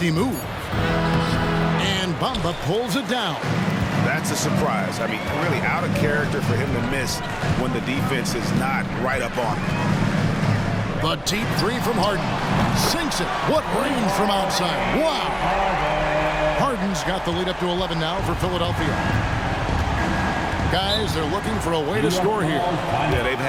move. And Bamba pulls it down. That's a surprise. I mean, really out of character for him to miss when the defense is not right up on him. The deep 3 from Harden. Sinks it. What range from outside. Wow. Harden's got the lead up to 11 now for Philadelphia. Guys, they're looking for a way to score here. Yeah, they've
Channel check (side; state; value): both; identical; correlation 1.00